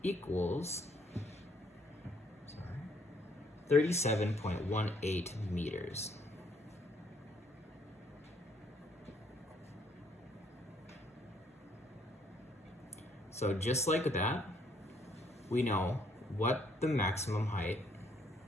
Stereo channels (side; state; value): both; normal; correlation 0.67